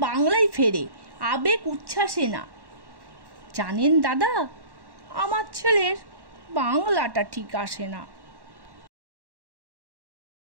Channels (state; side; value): late; left; 1.1 ms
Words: বাংলায় ফেরে, আবেগ উচ্ছ্বাসে না। জানেন দাদা, আমার ছেলের বাংলাটা ঠিক আসে না।